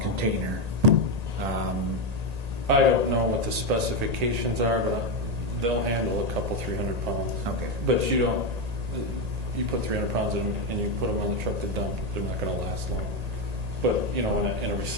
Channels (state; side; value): late; left; 1.8 ms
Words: container? I don't know what the specifications are, but they'll handle a couple 300 pounds. Okay. But you put 300 pounds in them and you put them on the truck to dump, they're not going to last long. But, in a